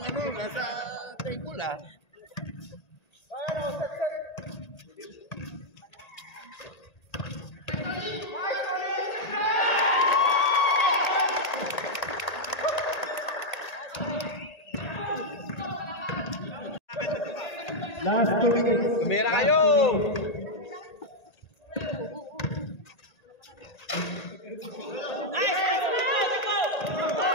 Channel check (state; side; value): late; right; 1.8 ms